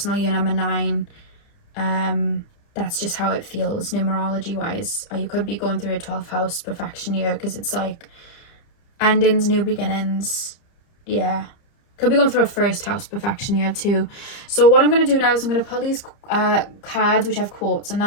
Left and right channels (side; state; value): right; late; 30 ms